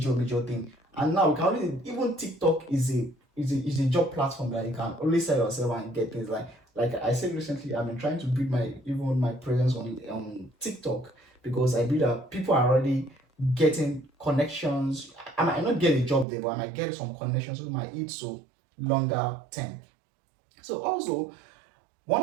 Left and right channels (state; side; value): drops out; left; at 16.2 s